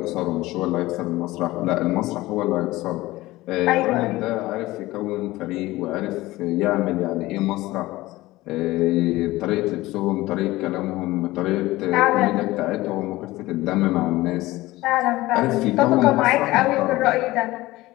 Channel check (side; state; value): right; quieter; 18.4 dB